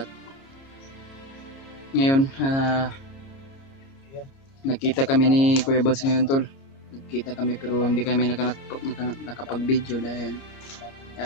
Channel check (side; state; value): right; late; 30 ms